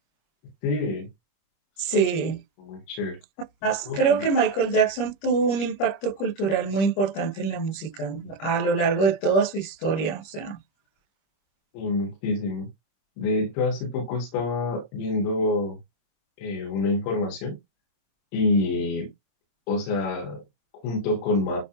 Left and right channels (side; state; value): right; late; 25 ms